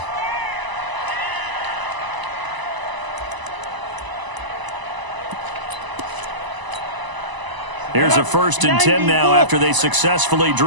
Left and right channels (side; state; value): left; late; 1.0 ms